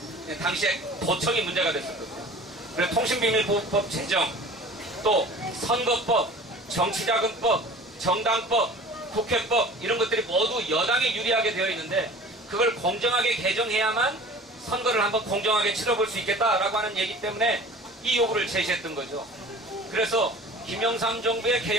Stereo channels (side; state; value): both; normal; correlation 0.43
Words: 당시에 도청이 문제가 됐었거든요. 그래서 통신비밀보호법 제정, 또 선거법, 정치자금법, 정당법, 국회법, 이런 것들이 모두 여당에 유리하게 되어 있는데, 그걸 공정하게 개정해야만 선거를 한번 공정하게 치러볼 수 있겠다라고 하는 얘기 때문에 이 요구를 제시했던 거죠. 그래서 김영삼 정부의